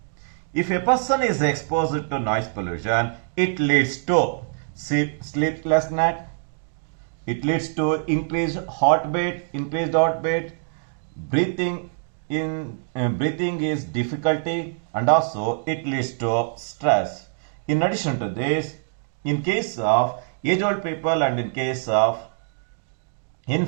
If a person is exposed to noise pollution, it leads to sleeplessness, it leads to increased heartbeat, breathing is difficulty, and also it leads to stress. In addition to this, in case of age-old people and in case of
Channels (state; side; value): silent; left; digital silence